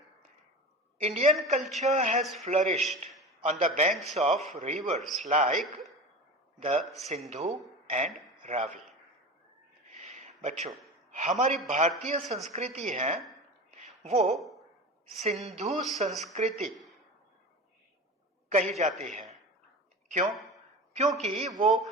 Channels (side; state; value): both; normal; correlation 0.30